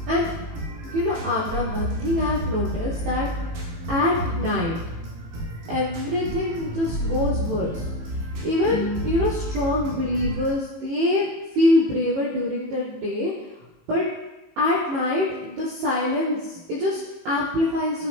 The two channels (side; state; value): left; late; 18 ms